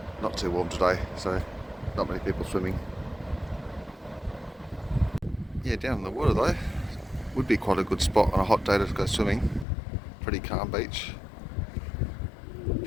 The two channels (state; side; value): drops out; right; at 9.7 s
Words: Not too warm today, so not many people swimming. Yeah, down in the water though, would be quite a good spot on a hot day to go swimming. Pretty calm beach.